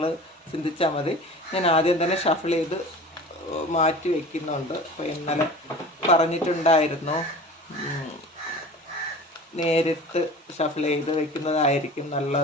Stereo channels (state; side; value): normal; both; correlation 0.39